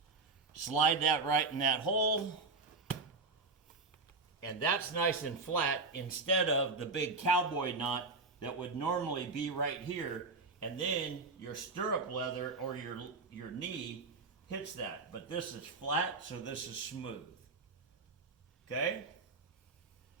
slide that right in that hole, and that's nice and flat instead of the big cowboy knot that would normally be right here, and then your stirrup leather or your knee hits that. But this is flat, so this is smooth. Okay?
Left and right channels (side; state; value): left; quieter; 3.9 dB